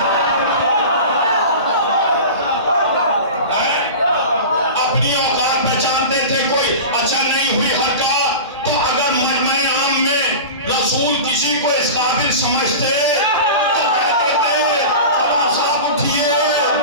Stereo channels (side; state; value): both; inverted; correlation -0.31